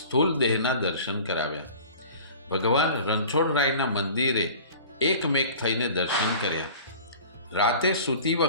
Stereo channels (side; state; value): both; inverted; correlation -0.43